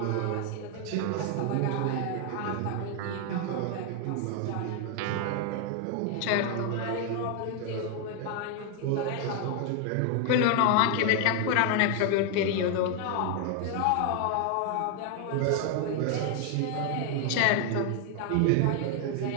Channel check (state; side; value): different; both; correlation 0.00